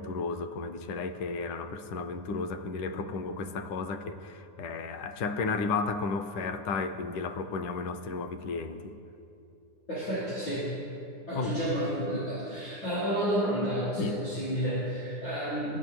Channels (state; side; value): late; right; 9.8 ms